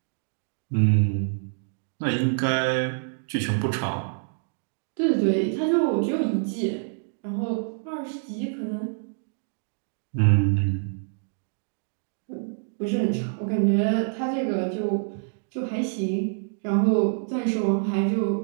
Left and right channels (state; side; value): silent; left; digital silence